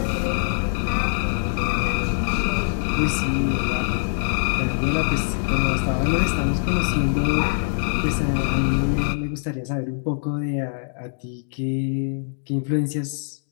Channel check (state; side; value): silent; right; digital silence